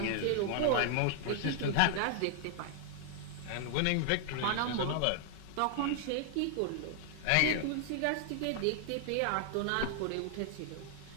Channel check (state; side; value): different; both; correlation 0.00